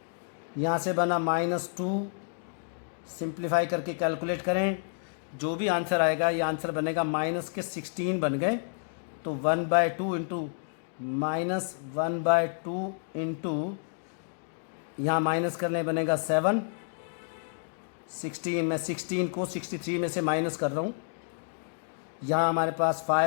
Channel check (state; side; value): silent; right; digital silence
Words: यहाँ से बना -2, सिंप्लीफाई करके कैलकुलेट करें, जो भी आंसर आएगा ये आंसर बनेगा -16 बन गए। तो 1/2 इंटू -1/2 इंटू यहाँ माइनस करने बनेगा 7 16, मैं 16 को 63 में से माइनस कर रहा हूँ, यहाँ हमारे पास